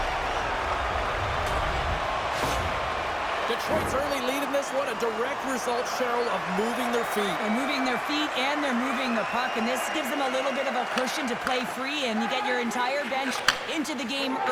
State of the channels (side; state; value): both; identical; correlation 1.00